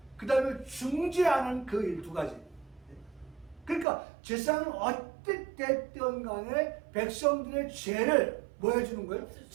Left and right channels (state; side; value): drops out; left; at 3.9 s